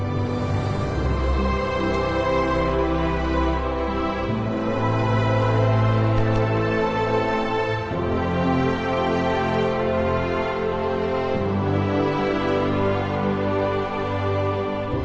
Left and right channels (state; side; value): identical; both; correlation 1.00